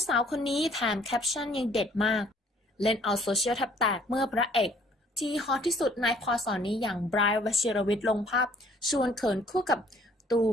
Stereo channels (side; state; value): both; normal; correlation 0.59